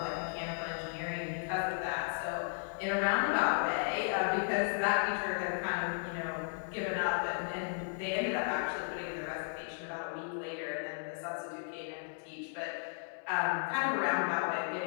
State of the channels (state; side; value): silent; right; digital silence